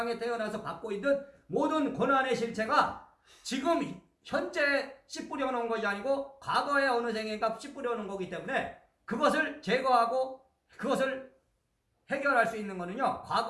태어나서 받고 있는 모든 고난의 실체가 지금 현재 씨 뿌려놓은 것이 아니고 과거의 어느 생인가 씨 뿌려놓은 거기 때문에 그것을 제거하고 그것을 해결할 수 있는 거는요,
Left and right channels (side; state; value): both; identical; correlation 1.00